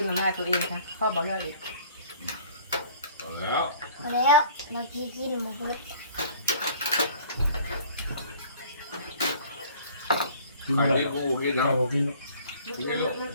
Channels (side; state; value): both; inverted; correlation -0.51